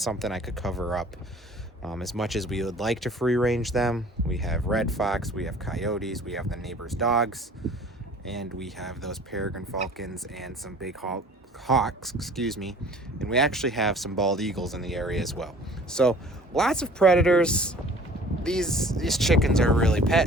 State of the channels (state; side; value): normal; both; correlation 0.49